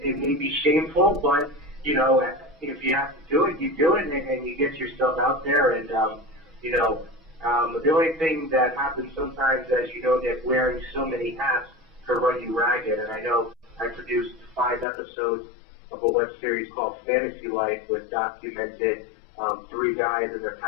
may be shameful, but, you know, if you have to do it, you do it, and you get yourself out there. And, you know, the only thing that happens sometimes, as you know, Nick, wearing so many hats can run you ragged. And I know I produced 5 episodes of a web series called Fantasy Life, which documented 3 guys and their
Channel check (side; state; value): right; drops out; at 14.9 s